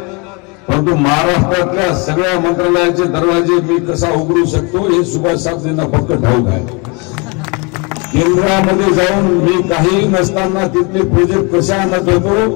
परंतु महाराष्ट्रातल्या सगळ्या मंत्रालयाचे दरवाजे मी कसा उघडू शकतो हे सुभाष साहेबांना फक्त ठाऊक आहे. केंद्रामध्ये जाऊन मी काही नसताना तिथले प्रोजेक्ट कशा आणत होतो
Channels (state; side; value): quieter; right; 30.7 dB